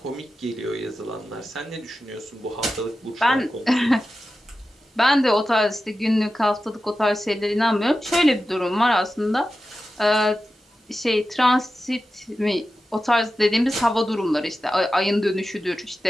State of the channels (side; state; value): both; normal; correlation 0.93